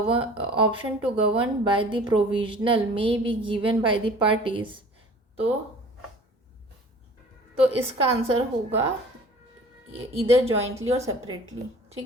govern by the provisional may be given by the parties, तो इसका आंसर होगा इधर जॉइंटली और सेपरेटली।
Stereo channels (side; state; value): both; normal; correlation 0.46